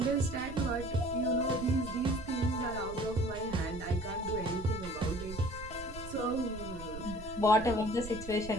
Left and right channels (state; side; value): noise; right; rumble, 12 dB below the sound